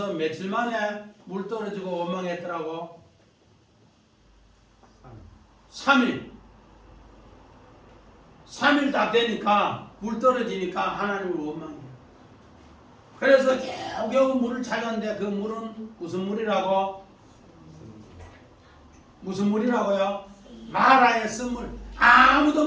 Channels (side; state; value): both; identical; correlation 1.00